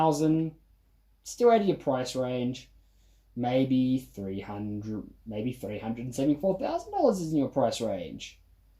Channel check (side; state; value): both; identical; correlation 1.00